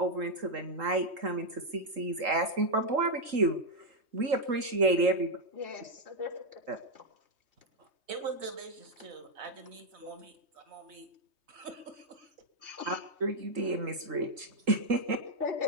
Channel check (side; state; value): left; late; 3.8 ms